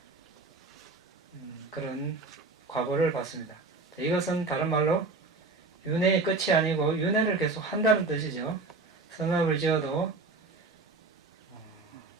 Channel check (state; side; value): quieter; left; 3.7 dB